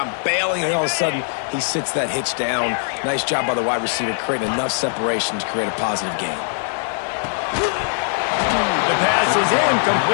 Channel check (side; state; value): right; silent; digital silence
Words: bailing, and all of a sudden he sits that hitch down. Nice job by the wide receiver creating enough separation to create a positive gain. The pass is